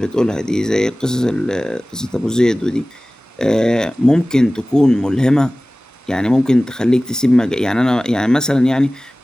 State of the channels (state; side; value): normal; both; correlation 0.98